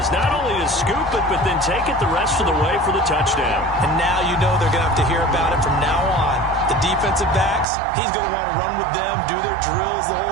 Not only to scoop it, but then take it the rest of the way for the touchdown. And now you know they're going to have to hear about it from now on. The defensive backs, he's going to want to run with them, do their drills, the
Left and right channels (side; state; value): left; drops out; at 7.7 s